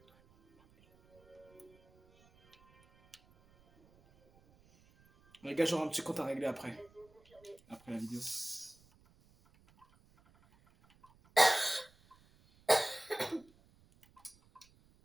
Les gars, j'aurai un petit compte à régler après la vidéo.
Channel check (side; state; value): right; noise; rumble, 30 dB below the sound